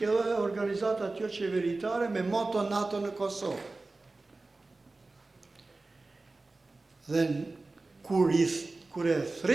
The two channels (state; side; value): quieter; left; 3.3 dB